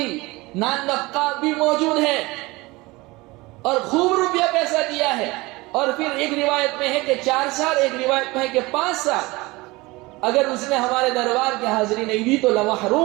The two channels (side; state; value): left; quieter; 22.2 dB